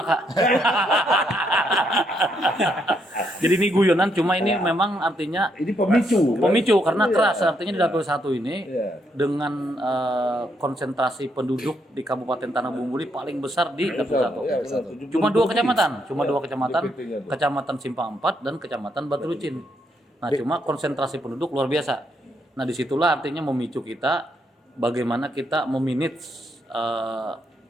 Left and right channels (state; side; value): normal; both; correlation 0.76